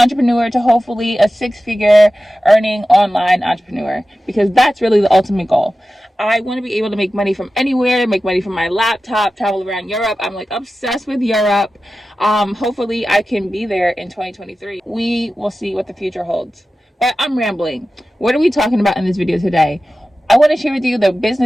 to hopefully a six-figure earning online entrepreneur, because that's really the ultimate goal. I want to be able to make money from anywhere, make money from my laptop, travel around Europe. I'm obsessed with Europe. Hopefully I can be there in 2023. We will see what the future holds. But I'm rambling. What are we talking about in this video today? I want to share with you the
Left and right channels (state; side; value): normal; both; correlation 0.94